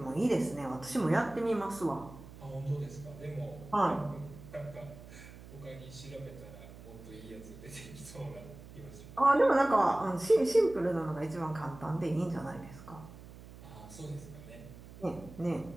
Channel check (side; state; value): right; noise; hum, 17 dB below the sound